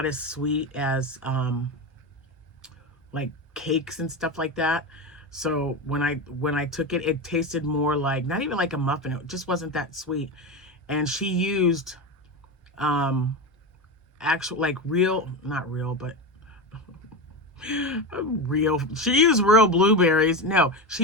as sweet as like cakes and stuff like that. So when I took it, it tasted more like, not even like a muffin. It just wasn't that sweet. And she used actual, like real, not real, but real. She used real blueberries. No,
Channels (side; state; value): both; normal; correlation 0.19